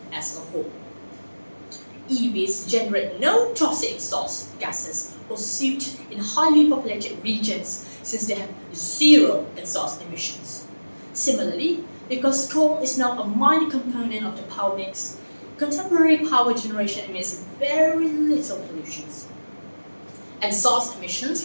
as a whole. EVs generate no toxic exhaust gases or soot in highly populated regions since they have zero exhaust emissions. Similarly, because coal is now a minor component of the power mix, contemporary power generation emits very little pollutions. Exhaust emissions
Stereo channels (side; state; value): both; inverted; correlation -1.00